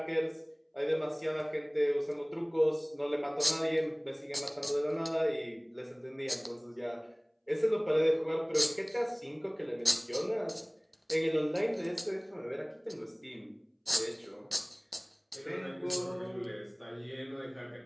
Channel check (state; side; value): identical; both; correlation 1.00